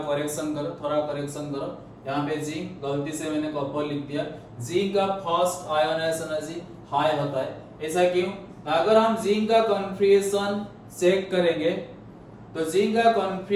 करो, यहाँ पे जिंक, गलती से मैंने कॉपर लिख दिया, जिंक का फर्स्ट आयोनाइजेशन एनर्जी हाई होता है, ऐसा क्यों? अगर हम जिंक का कॉन्फिगरेशन चेक करेंगे, तो जिंक का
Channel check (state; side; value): identical; both; correlation 1.00